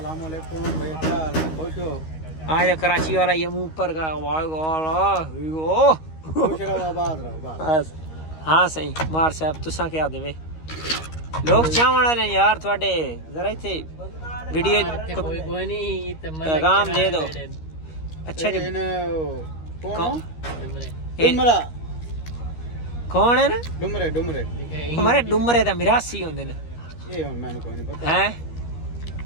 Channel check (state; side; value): late; right; 13 ms